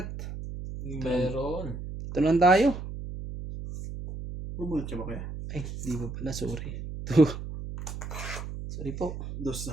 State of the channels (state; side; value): noise; right; hum, 8 dB below the sound